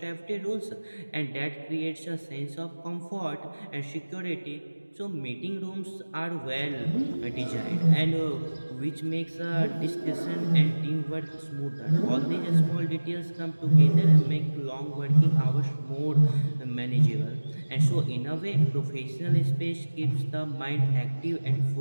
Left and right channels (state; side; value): inverted; both; correlation -1.00